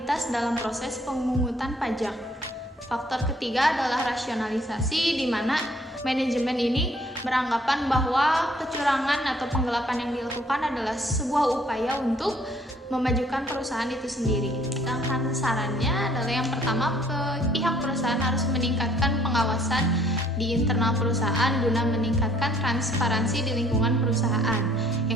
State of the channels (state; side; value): normal; both; correlation 0.61